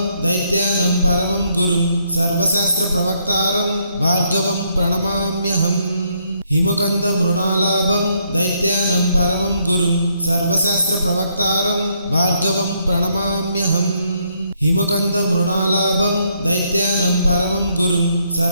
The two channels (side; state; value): both; inverted; correlation -0.73